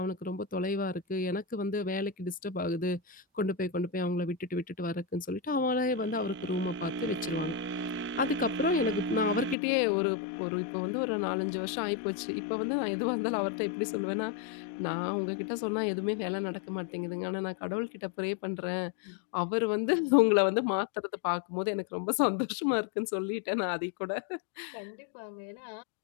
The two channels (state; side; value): drops out; right; at 9.6 s